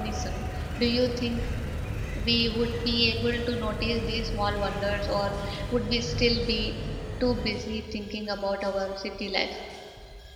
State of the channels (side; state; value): both; identical; correlation 1.00